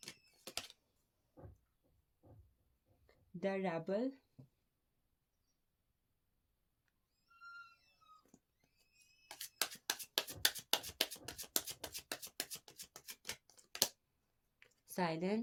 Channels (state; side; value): identical; both; correlation 1.00